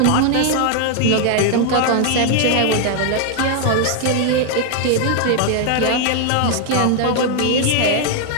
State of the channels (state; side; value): different; both; correlation 0.00